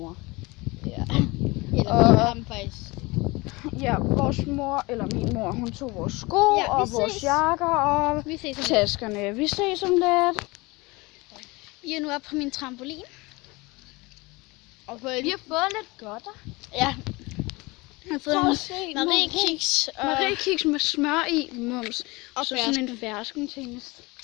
Ja. Eller vi har dem faktisk. Ja, vores mor, eller min mor, hun tog vores sko Ja, og vores jakker og Vi ses om lidt. taskerne. Vi ses om lidt. Vi er nu oppe på min trampolin. Og vi har fået lidt godter. Ja. Jeg har fået Prøv en at se, Marie-kiks og Marie-kiks med smør i, mums. Og så sådan en fersken til.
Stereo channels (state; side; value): quieter; right; 24.0 dB